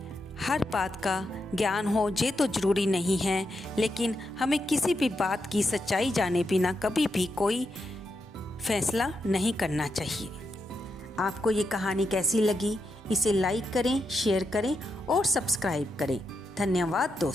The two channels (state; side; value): normal; both; correlation 0.84